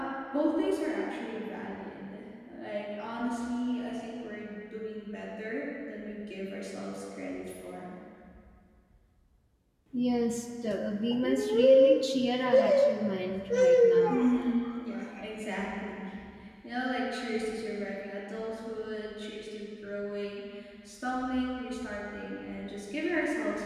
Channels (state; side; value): identical; both; correlation 1.00